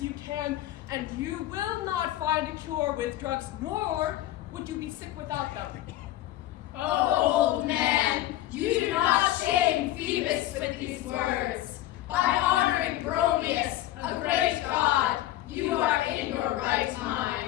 you can, and you will not find a cure with drugs, nor would you be sick without them. Oh, old man, you do not shame Phoebus with these words. By honoring Bromius, a great god, you are in your right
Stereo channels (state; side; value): quieter; right; 14.6 dB